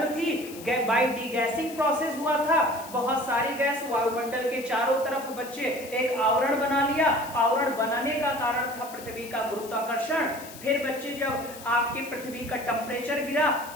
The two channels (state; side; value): noise; left; hiss, 16 dB below the sound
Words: थी। बाय डीगैसिंग प्रोसेस हुआ था, बहुत सारी गैस वायुमंडल के चारों तरफ बच्चे एक आवरण बना लिया। आवरण बनाने का कारण था पृथ्वी का गुरुत्वाकर्षण। फिर बच्चे जब आपके पृथ्वी का टेम्परेचर गिरा